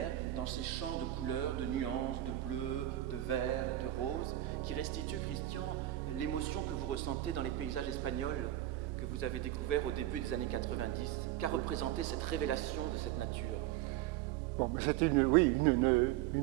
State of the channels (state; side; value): quieter; left; 14.1 dB